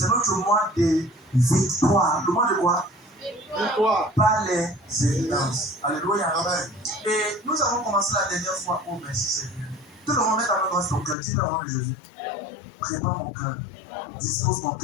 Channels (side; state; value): right; drops out; at 11.2 s